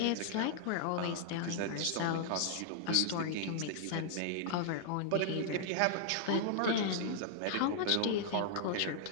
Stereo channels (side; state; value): both; different; correlation -0.01